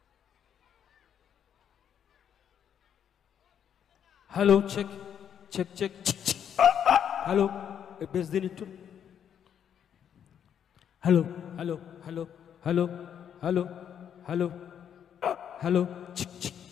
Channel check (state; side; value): quieter; right; 8.8 dB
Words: Hello, check check check. Hello, বেশ দিন একটু। Hello hello hello hello hello hello hello